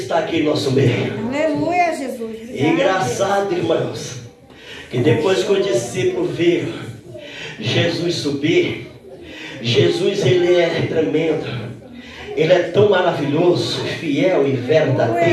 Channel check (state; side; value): identical; both; correlation 1.00